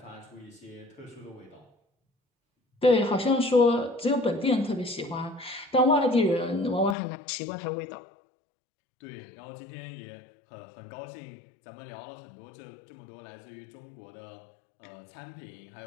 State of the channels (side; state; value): right; drops out; at 7.0 s